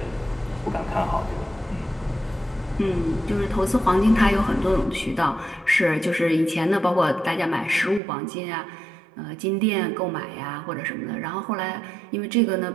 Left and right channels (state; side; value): drops out; left; at 8.0 s